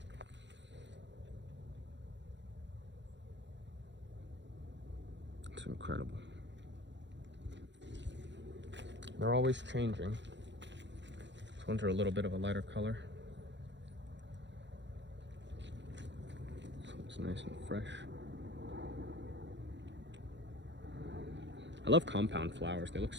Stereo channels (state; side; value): late; left; 0.52 ms